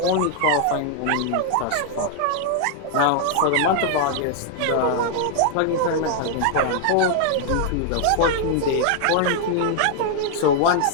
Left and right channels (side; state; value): both; different; correlation 0.00